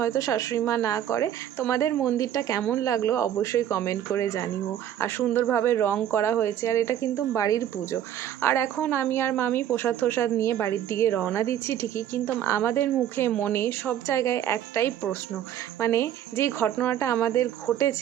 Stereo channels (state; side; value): quieter; left; 10.7 dB